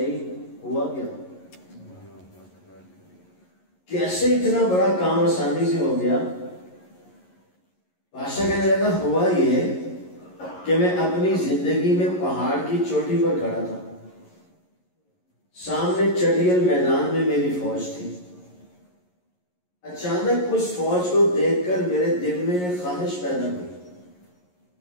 ہوا کیا؟ کیسے اتنا بڑا کام آسانی سے ہو گیا؟ بادشاہ کہنے لگا ہوا یہ کہ میں اپنی زندگی میں پہاڑ کی چوٹی پر کھڑا تھا, سامنے چٹیل میدان میں میری فوج تھی. اچانک اس فوج کو دیکھ کر میرے دل میں ایک خواہش پیدا ہوئی.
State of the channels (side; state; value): right; late; 11 ms